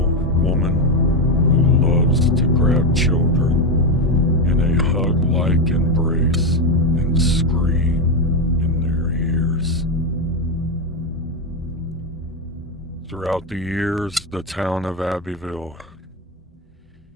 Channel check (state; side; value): normal; both; correlation 0.09